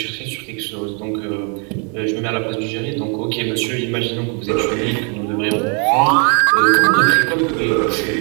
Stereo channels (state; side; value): quieter; left; 37.2 dB